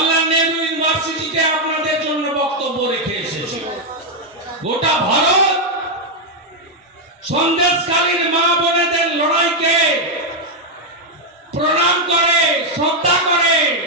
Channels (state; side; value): normal; both; correlation 0.00